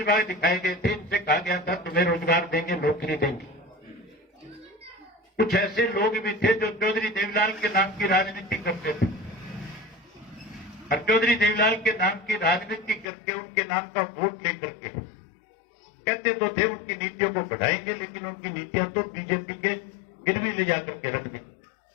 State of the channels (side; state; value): right; drops out; at 13.1 s